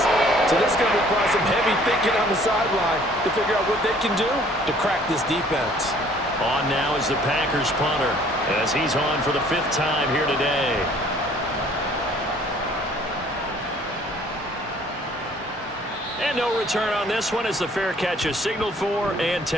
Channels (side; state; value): both; normal; correlation 0.57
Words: So this is going to require some heavy thinking on the sideline to figure out what they can do to crack this defense. On now is the Packers punter as he's on for the 5th time here today. And no return on this one as the fair catch is signaled for and